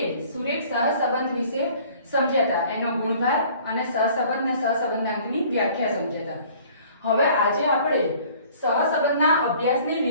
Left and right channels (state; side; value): inverted; both; correlation -0.52